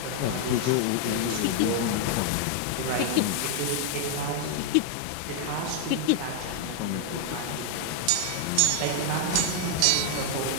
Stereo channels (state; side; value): different; both; correlation 0.00